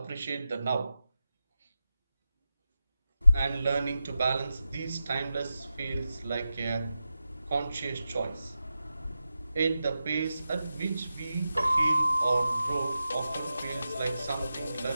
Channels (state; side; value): inverted; both; correlation -0.91